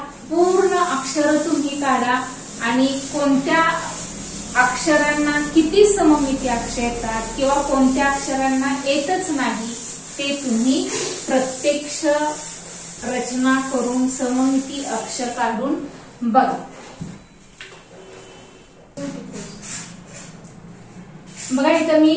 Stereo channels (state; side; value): identical; both; correlation 1.00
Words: पूर्ण अक्षर तुम्ही काढा आणि कोणत्या अक्षरांना किती सममिती अक्ष येतात किंवा कोणत्या अक्षरांना येतच नाही ते तुम्ही प्रत्यक्ष रचना करून सममिती अक्ष काढून बघा. बघा इथं मी